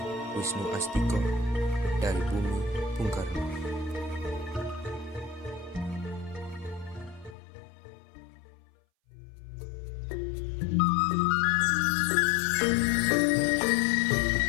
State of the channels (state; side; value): drops out; right; at 7.4 s